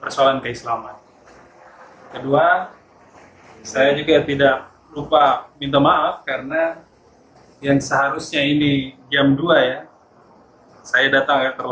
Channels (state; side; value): identical; both; correlation 1.00